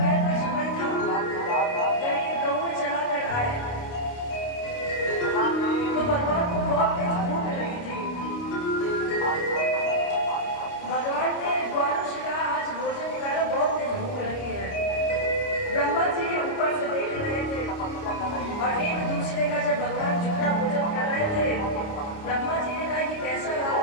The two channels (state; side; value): late; right; 29 ms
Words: का समय था, जब ये गऊ चला कर आए तो भगवान को बहुत तेज भूख लगी थी। भगवान ने ग्वालों से कहा आज भोजन निकालो, बहुत तेज भूख लगी है। ब्रह्मा जी ऊपर से देख रहे थे और एक दूसरे का जब भगवान झूठा भोजन कर रहे थे, ब्रह्मा जी ने कहा ये कैसा